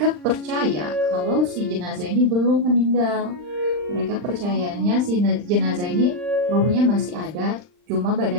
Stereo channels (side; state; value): left; late; 39 ms